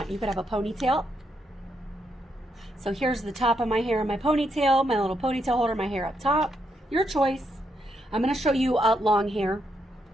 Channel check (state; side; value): normal; both; correlation 0.79